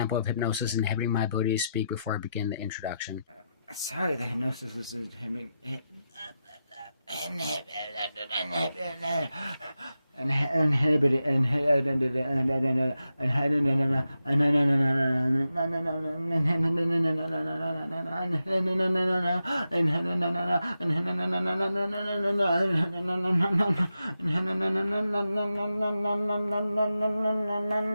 of hypnosis inhibiting my ability to speak before I begin the introduction. Sorry, the hypnosis was inhibiting.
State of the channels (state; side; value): inverted; both; correlation -0.89